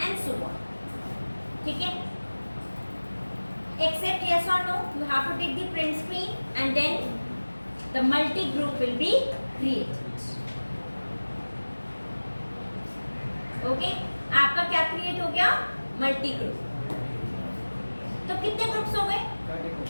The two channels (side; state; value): both; inverted; correlation -1.00